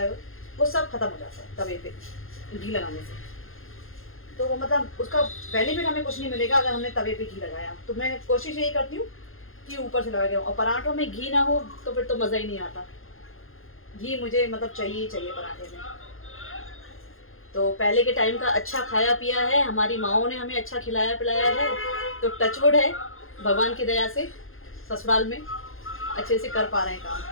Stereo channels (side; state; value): right; late; 0.60 ms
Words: है वो सब खत्म हो जाता है तवे पे घी लगाने से। तो वो मतलब उसका बेनिफिट हमें कुछ नहीं मिलेगा अगर हमने तवे पे घी लगाया। तो मैं कोशिश यही करती हूँ कि ऊपर से लगा के, और पराठों में घी ना हो तो फिर तो मज़ा ही नहीं आता। घी मुझे मतलब चाहिए ही चाहिए पराठे में। तो पहले के टाइम का अच्छा खाया पिया है, हमारी माँओं ने हमें अच्छा खिलाया पिलाया है, तो टचवुड है भगवान की दया से ससुराल में अच्छे से कर पा रहे हैं